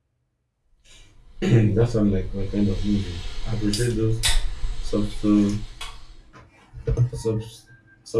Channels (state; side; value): identical; both; correlation 1.00